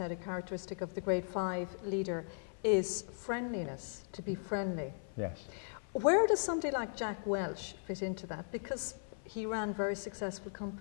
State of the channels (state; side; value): silent; right; 53 dB below the other